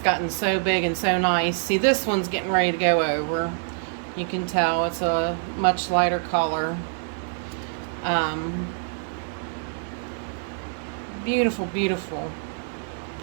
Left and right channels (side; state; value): left; silent; 61 dB below the other